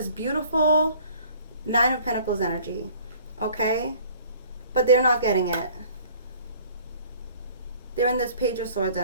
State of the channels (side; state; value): both; inverted; correlation -0.52